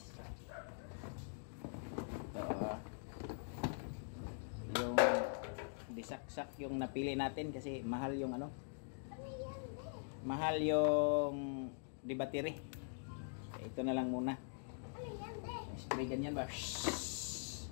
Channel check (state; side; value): silent; right; digital silence